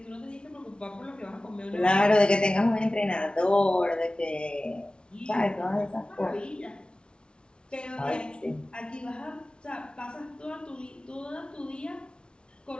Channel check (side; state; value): right; late; 0.056 ms